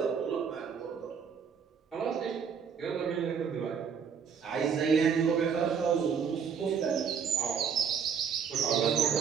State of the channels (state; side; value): quieter; left; 6.7 dB